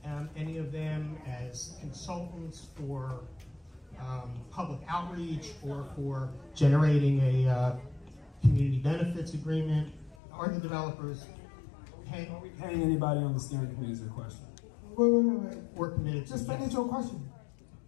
any of them as consultants for public outreach or for generating a community benefits agreement? Are the developers paying? Are we paying anybody on the steering committee is the question? Wait. We're committed to. Just finish your question.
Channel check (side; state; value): right; drops out; at 10.2 s